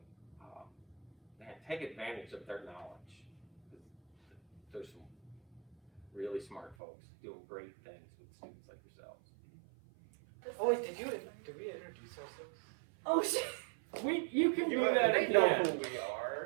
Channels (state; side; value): drops out; left; at 6.8 s